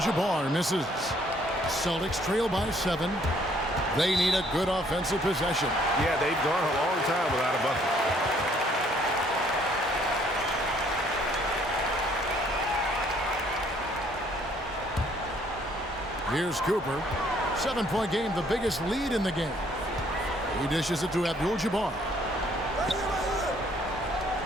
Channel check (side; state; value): both; normal; correlation 0.63